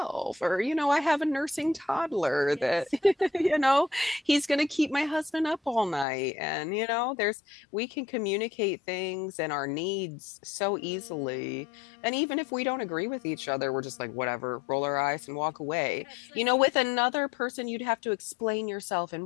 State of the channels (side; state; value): right; drops out; at 6.1 s